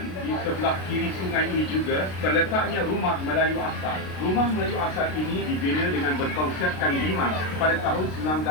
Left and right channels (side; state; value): right; late; 33 ms